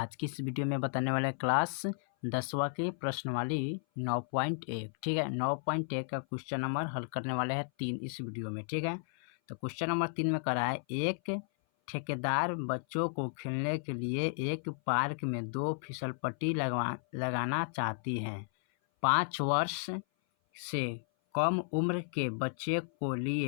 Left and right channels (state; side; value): silent; right; 55 dB below the other